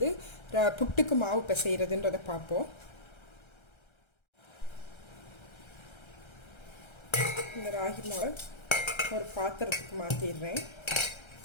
புட்டுக்கு மாவு பிசைகிறதுன்றதை பார்ப்போம். இந்த ராகி மாவை ஒரு பாத்திரத்துக்கு மாற்றிடுறேன்.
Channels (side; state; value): right; late; 1.3 ms